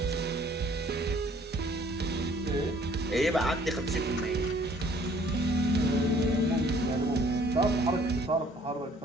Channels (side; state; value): both; normal; correlation 0.58